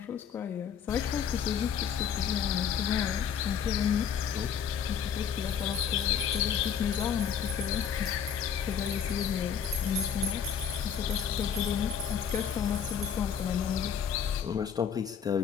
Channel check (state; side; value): quieter; right; 7.8 dB